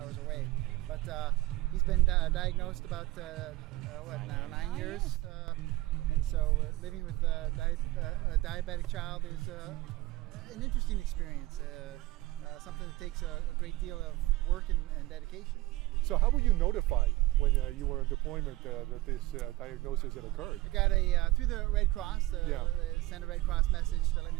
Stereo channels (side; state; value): left; quieter; 18.2 dB